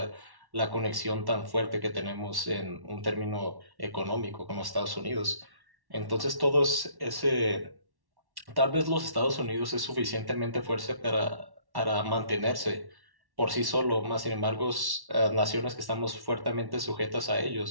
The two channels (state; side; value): late; left; 1.1 ms